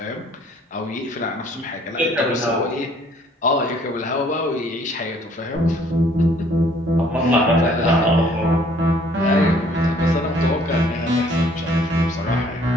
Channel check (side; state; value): both; normal; correlation 0.59